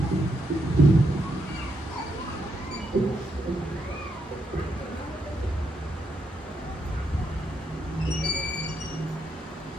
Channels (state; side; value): normal; both; correlation 0.80